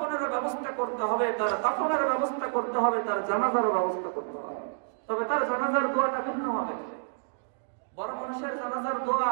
ব্যবস্থা করতে হবে, তার দাফনের ব্যবস্থা করতে হবে, তার জানাজার ব্যবস্থা করতে হবে। তবে তার জানাজার দোয়াটা ভিন্ন হবে। বড় মানুষের জানাজার দোয়া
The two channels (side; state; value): left; silent; digital silence